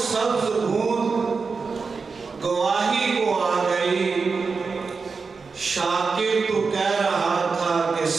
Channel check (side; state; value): left; quieter; 4.8 dB